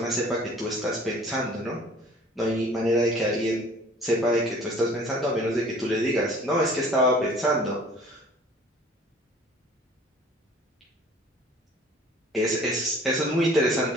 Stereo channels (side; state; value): both; normal; correlation 0.50